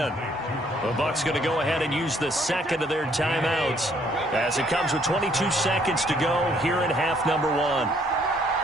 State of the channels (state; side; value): normal; both; correlation 0.65